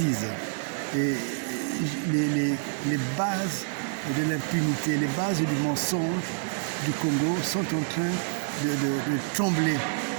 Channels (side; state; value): left; silent; digital silence